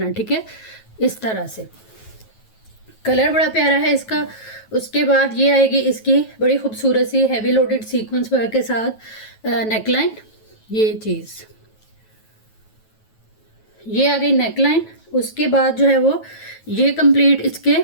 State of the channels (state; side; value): late; right; 9.2 ms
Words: है, ठीक है। इस तरह से कलर बड़ा प्यारा है इसका। उसके बाद ये आएगी इसकी बड़ी खूबसूरत सी हैवी लोडेड सीक्वेंस वर्क के साथ नेकलाइन। ये चीज़ ये आ गई नेकलाइन। उसके बाद जो है वो ये कंप्लीट इसके